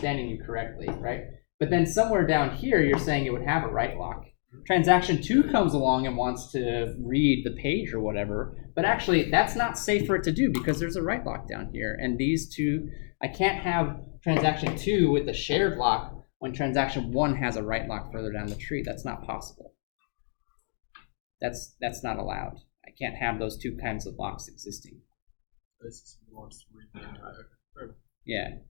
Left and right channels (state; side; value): silent; right; digital silence